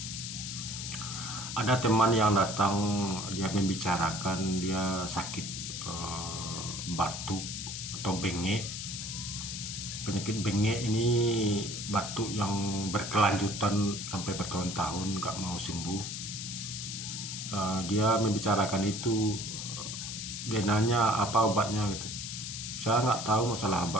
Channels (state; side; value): noise; left; hiss, 6 dB below the sound